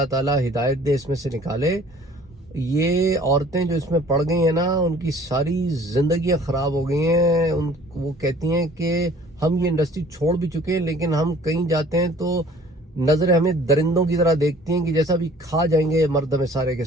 تعالیٰ ہدایت دے، اس میں سے نکالے. یہ عورتیں جو اس میں پڑ گئی ہیں نا ان کی ساری زندگیاں خراب ہو گئی ہیں. وہ کہتی ہیں کہ ہم یہ انڈسٹری چھوڑ بھی چکے ہیں، لیکن ہم کہیں جاتے ہیں تو نظریں ہمیں درندوں کی طرح دیکھتی ہیں کہ جیسا بھی کھا جائیں گے مرد ہمیں سارے کے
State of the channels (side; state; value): both; normal; correlation 0.51